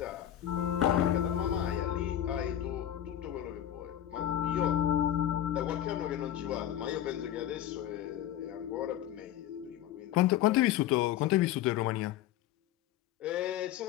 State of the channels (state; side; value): quieter; right; 11.8 dB